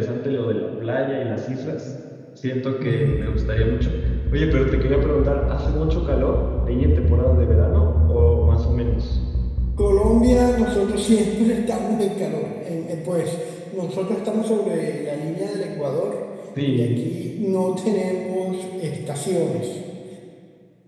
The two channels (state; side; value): identical; both; correlation 1.00